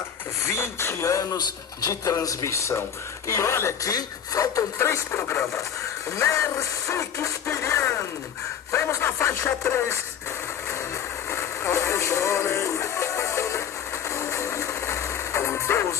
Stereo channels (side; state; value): right; quieter; 8.6 dB